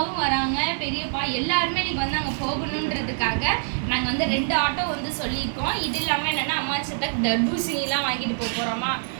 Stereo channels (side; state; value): left; silent; 57 dB below the other